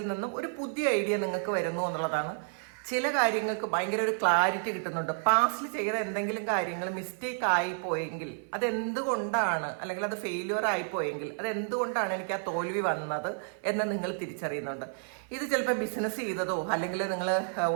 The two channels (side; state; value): left; silent; 57 dB below the other